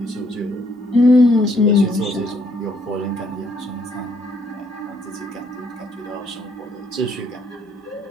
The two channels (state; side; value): normal; both; correlation 0.69